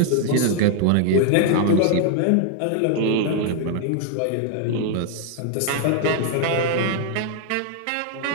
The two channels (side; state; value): both; different; correlation 0.00